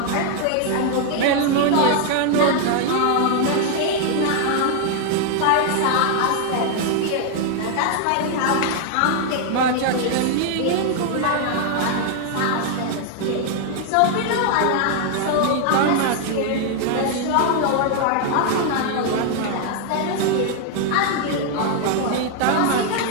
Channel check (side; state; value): both; different; correlation 0.00